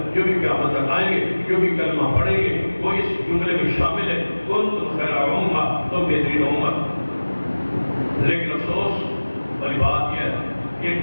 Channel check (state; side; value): inverted; both; correlation -1.00